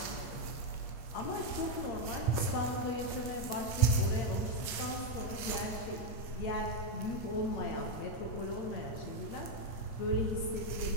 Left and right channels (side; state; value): right; late; 8.0 ms